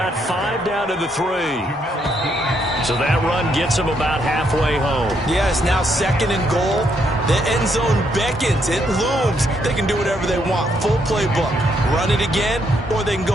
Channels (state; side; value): normal; both; correlation 0.74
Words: 5 down to the 3. So that run gets him about halfway home. Yes, now 2nd and goal. The end zone beckons. It looms. They can do whatever they want. Full playbook. Run it again, or they can